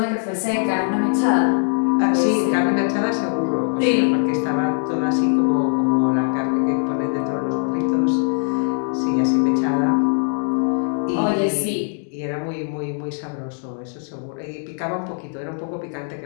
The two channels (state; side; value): silent; right; 55 dB below the other